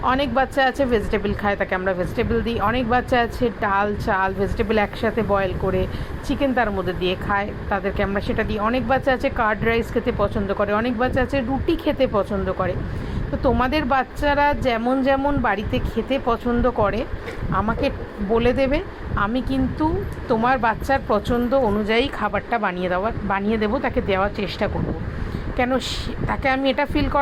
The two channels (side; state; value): both; identical; correlation 1.00